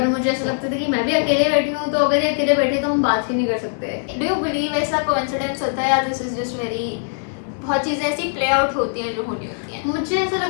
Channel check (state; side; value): silent; right; 56 dB below the other